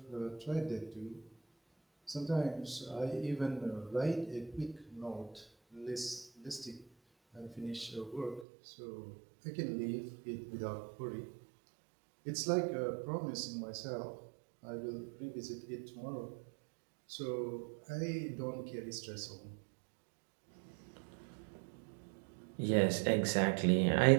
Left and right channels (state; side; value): drops out; left; at 8.5 s